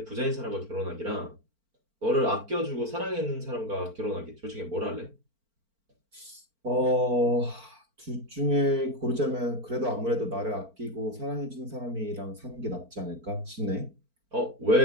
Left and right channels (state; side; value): late; left; 4.4 ms